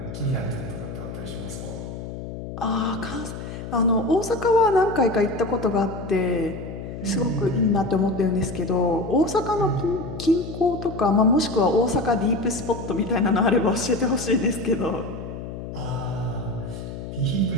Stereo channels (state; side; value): noise; left; hum, 9 dB below the sound